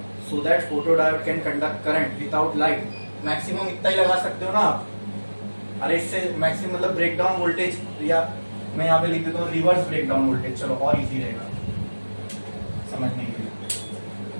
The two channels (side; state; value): both; inverted; correlation -1.00